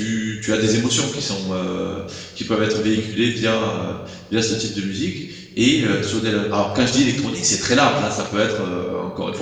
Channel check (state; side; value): identical; both; correlation 1.00